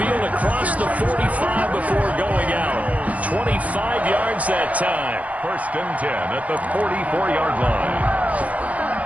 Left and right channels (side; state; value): left; late; 0.068 ms